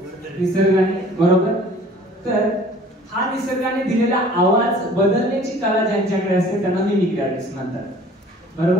निसर्गाने बरोबर तर हा निसर्गाने दिलेला आवाज बदलण्याची कला ज्यांच्याकडे असते त्यांना मिमिक्री आर्टिस्ट म्हणतात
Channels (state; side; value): normal; both; correlation 0.50